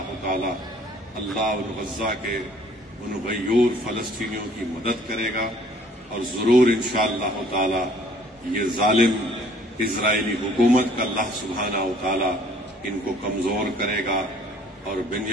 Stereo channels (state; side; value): normal; both; correlation 0.57